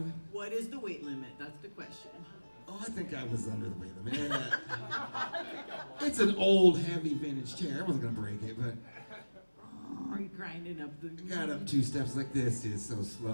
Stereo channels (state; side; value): inverted; both; correlation -1.00